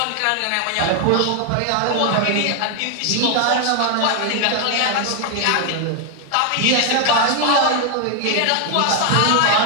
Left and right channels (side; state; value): both; different; correlation 0.01